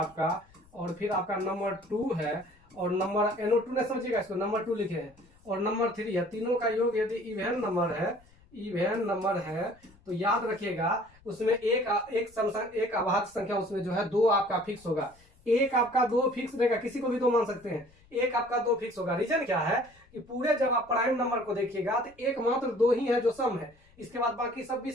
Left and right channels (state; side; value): noise; left; rumble, 28 dB below the sound